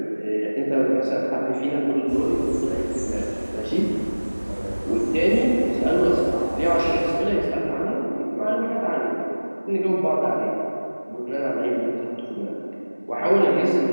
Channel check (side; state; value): both; inverted; correlation -1.00